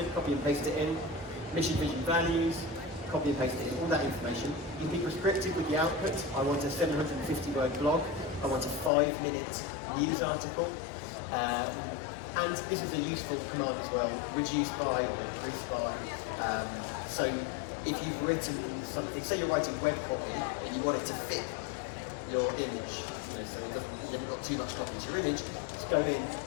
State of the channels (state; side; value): drops out; right; at 8.9 s